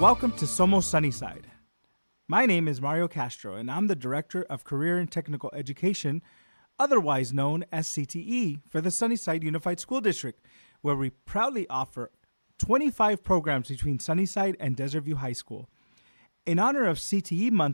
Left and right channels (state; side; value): inverted; both; correlation -1.00